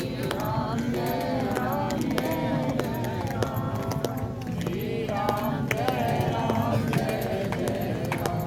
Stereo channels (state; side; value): identical; both; correlation 1.00